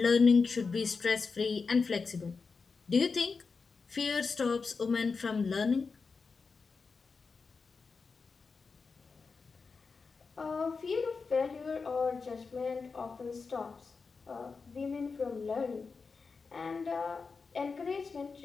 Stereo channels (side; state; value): right; quieter; 4.7 dB